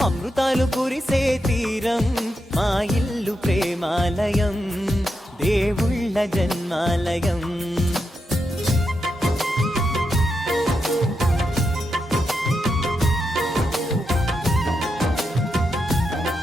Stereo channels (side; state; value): both; normal; correlation 0.85